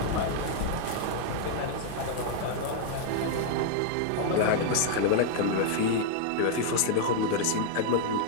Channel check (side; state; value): both; different; correlation 0.00